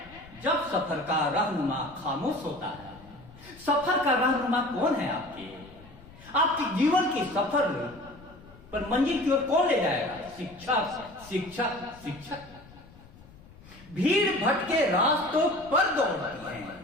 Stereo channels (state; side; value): noise; left; rumble, 22 dB below the sound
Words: जब सफर का रहनुमा खामोश होता है। सफर का रहनुमा कौन है आपके जीवन के सफर पर मंजिल की ओर कौन ले जाएगा? शिक्षक, शिक्षक, शिक्षक। भीड़ भटके रास्तों पर दौड़ती हैं,